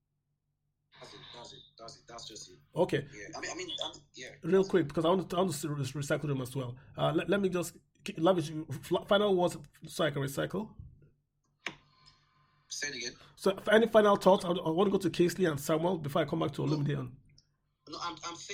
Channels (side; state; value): both; identical; correlation 1.00